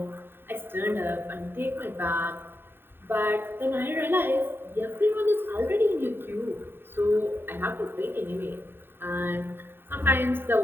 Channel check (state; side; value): late; left; 0.10 ms